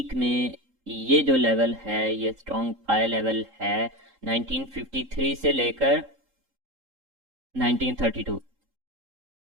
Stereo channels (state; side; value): late; left; 3.8 ms